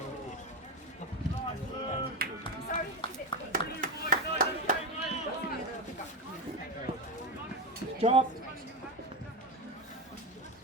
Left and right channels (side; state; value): both; normal; correlation 0.15